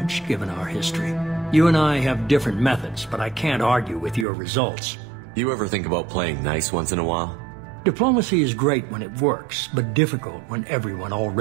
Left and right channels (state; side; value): drops out; left; at 4.2 s